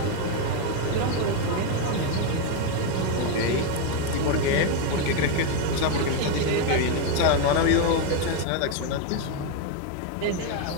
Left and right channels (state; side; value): different; both; correlation 0.02